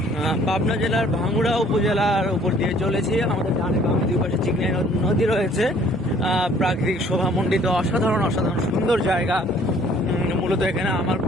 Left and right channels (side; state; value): both; normal; correlation 0.57